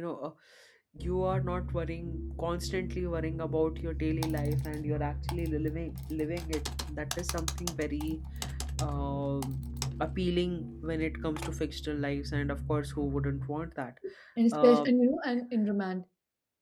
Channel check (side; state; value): both; identical; correlation 1.00